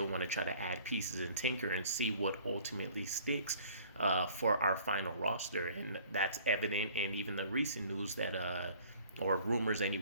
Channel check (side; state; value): both; inverted; correlation -0.52